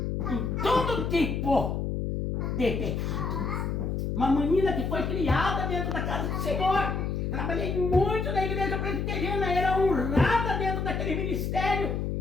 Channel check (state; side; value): noise; left; hum, 1 dB below the sound